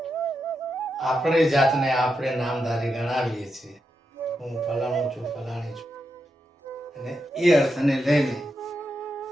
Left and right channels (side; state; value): both; normal; correlation 0.86